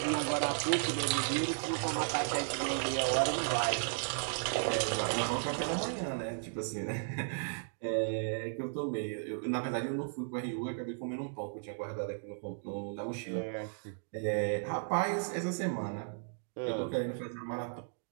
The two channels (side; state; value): left; silent; digital silence